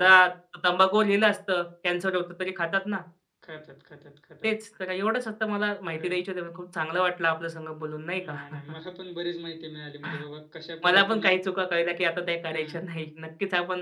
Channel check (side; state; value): both; identical; correlation 1.00